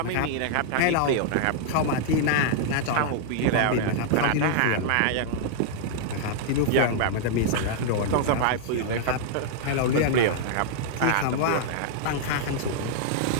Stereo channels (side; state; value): both; different; correlation -0.01